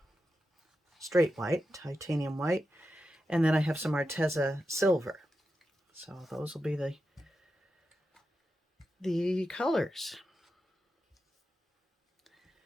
straight white, titanium white. And then I have some Arteza silver. So those will be the colors.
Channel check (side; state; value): both; normal; correlation 0.89